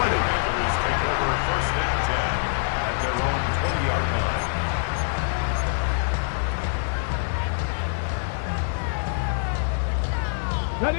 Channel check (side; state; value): right; silent; 62 dB below the other